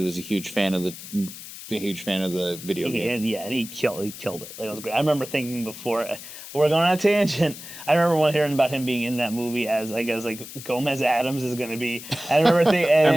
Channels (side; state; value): left; noise; hiss, 13 dB below the sound